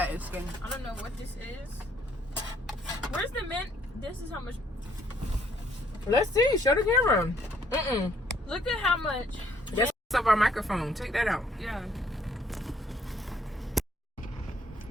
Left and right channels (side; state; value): both; normal; correlation 0.66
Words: and skin. I don't know what this is. Where's the mint? This is how much. Let's see. Show the camera. Look at how much. That's up our microphone. Take that out. Yeah.